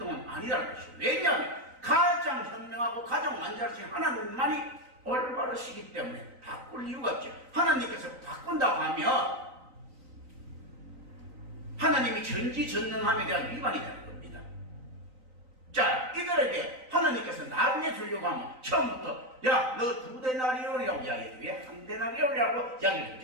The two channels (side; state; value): left; late; 3.9 ms